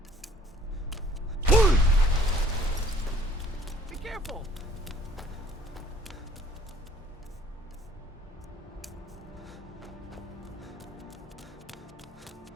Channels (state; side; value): normal; both; correlation 0.56